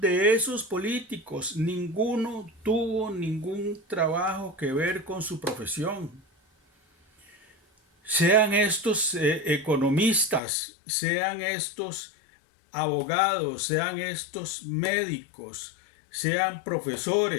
esos políticos, ninguno tuvo ningún trabajo que ver con su profesión. Sean estos economistas, sean estos abogados, sean estos médicos, sean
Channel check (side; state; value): right; drops out; at 10.4 s